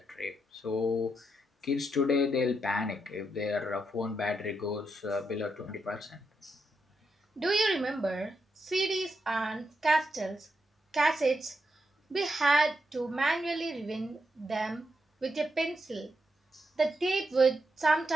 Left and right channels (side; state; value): both; normal; correlation 0.83